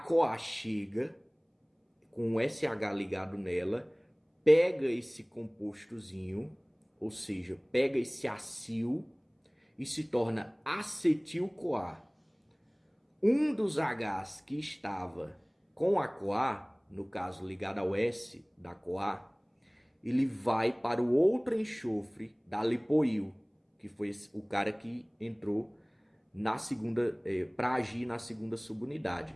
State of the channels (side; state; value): both; identical; correlation 1.00